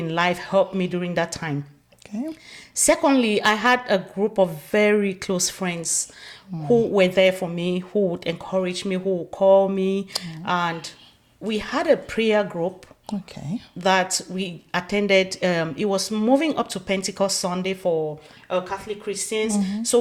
life helped me during that time. Okay. Secondly, I had a group of very close friends who were there for me, who would encourage me, who would call me. And we had a prayer group Okay. that we attended. It was moving up to Pentecost Sunday for Catholic Christians. So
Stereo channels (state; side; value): identical; both; correlation 1.00